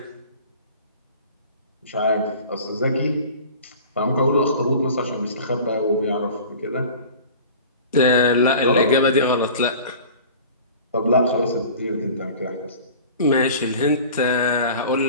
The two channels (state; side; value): inverted; both; correlation -0.42